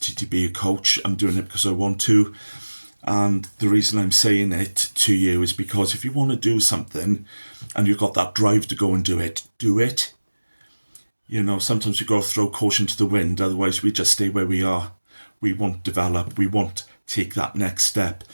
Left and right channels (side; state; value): both; inverted; correlation -1.00